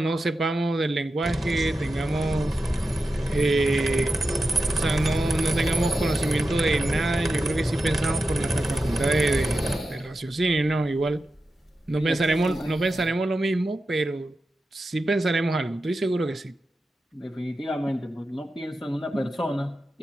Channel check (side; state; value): both; normal; correlation 0.91